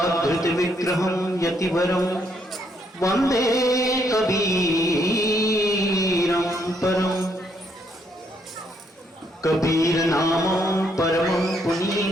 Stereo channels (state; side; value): normal; both; correlation 0.73